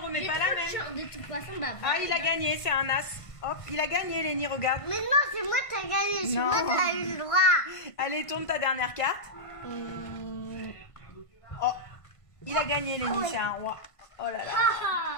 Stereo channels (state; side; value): late; right; 1.5 ms